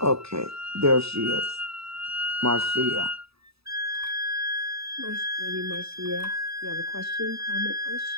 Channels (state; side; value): late; left; 0.77 ms